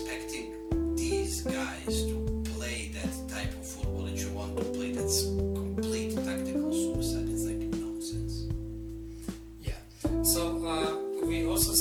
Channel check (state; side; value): identical; both; correlation 1.00